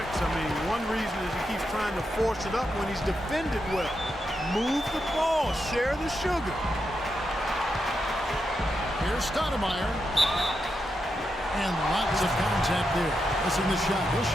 I mean, one reason is he keeps trying to force it up when he's defended well. Move the ball. Share the sugar. Here's Stoudemire. And lots of contact there. Missing the shot. He'll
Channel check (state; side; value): normal; both; correlation 0.85